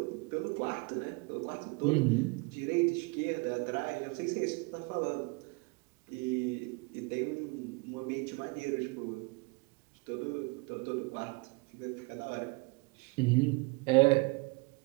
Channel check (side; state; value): left; quieter; 28.9 dB